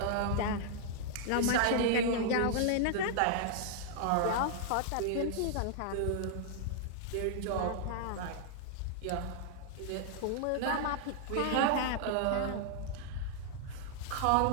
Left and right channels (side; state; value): both; different; correlation -0.01